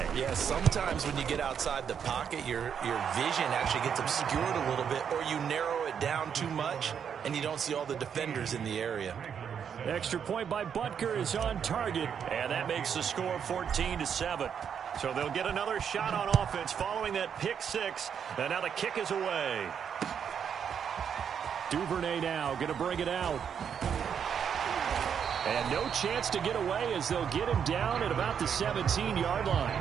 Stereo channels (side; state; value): left; quieter; 7.7 dB